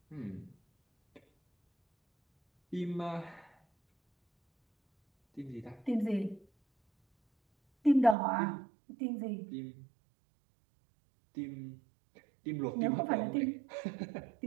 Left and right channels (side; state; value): left; drops out; at 8.2 s